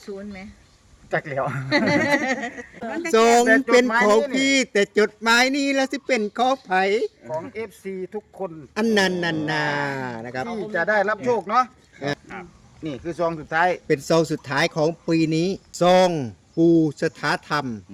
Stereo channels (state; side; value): identical; both; correlation 1.00